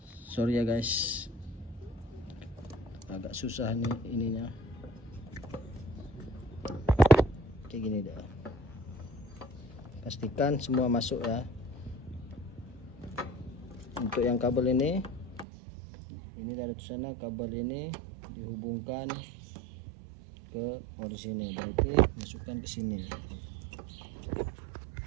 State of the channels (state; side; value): drops out; left; at 15.5 s